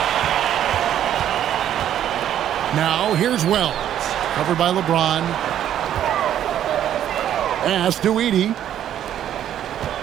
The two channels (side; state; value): left; quieter; 10.8 dB